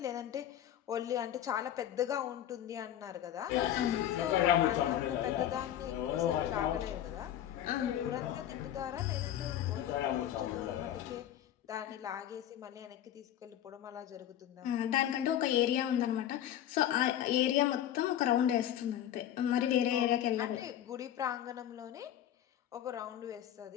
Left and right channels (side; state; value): right; quieter; 11.3 dB